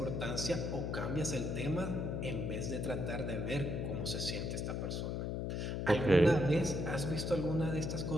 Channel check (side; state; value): left; noise; hum, 1 dB below the sound